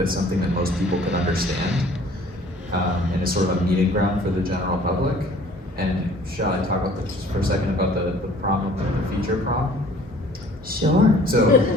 something that most people can understand, and it's sort of a meeting ground for the general public. And shall I talk about this just for a second about the prom, the feature prom? Sure.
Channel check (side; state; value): both; normal; correlation 0.53